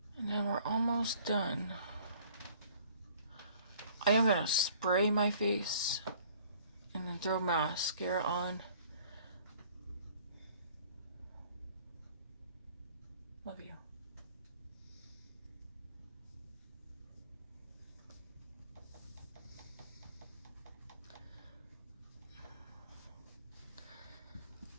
And then we're almost done. I am gonna spray my face and then throw mascara on. Love you.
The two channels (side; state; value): both; inverted; correlation -0.55